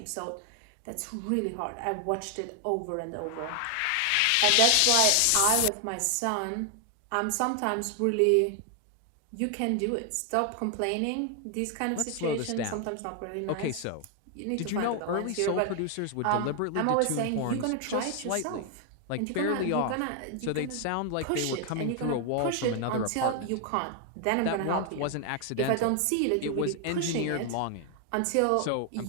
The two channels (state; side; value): different; both; correlation 0.00